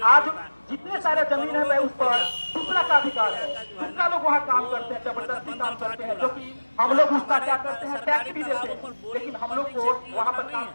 आज जितने सारे जमीन है उस पर दूसरा का अधिकार है। दूसरा लोग वहाँ काम करते हैं, जबरदस्ती काम करते हैं, जो कि हम लोग उसका क्या करते हैं, टैक्स भी देते हैं, लेकिन हम लोग को वहाँ पर काम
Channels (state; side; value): inverted; both; correlation -1.00